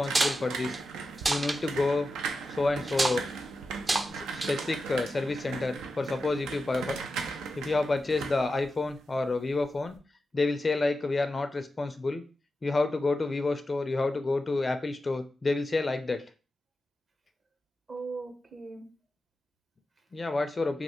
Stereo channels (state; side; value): normal; both; correlation 0.91